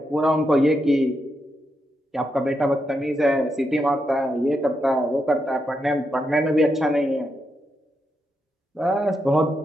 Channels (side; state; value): both; normal; correlation 0.83